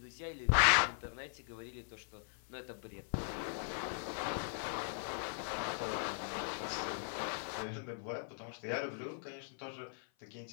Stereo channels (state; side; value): silent; right; 51 dB below the other